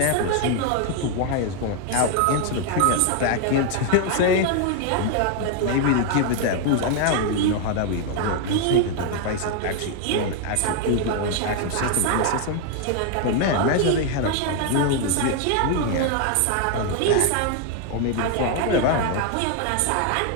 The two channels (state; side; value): different; both; correlation 0.01